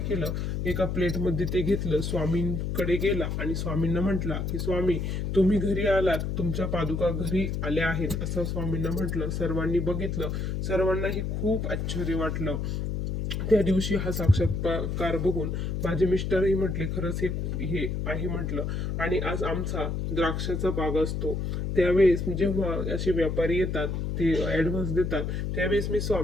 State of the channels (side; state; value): left; noise; hum, 2 dB below the sound